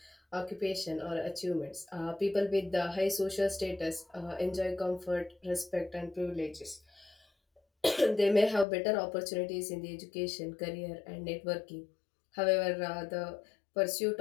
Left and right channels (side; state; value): right; drops out; at 8.7 s